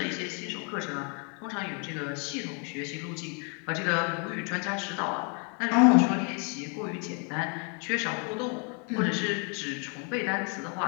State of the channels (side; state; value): right; quieter; 37.5 dB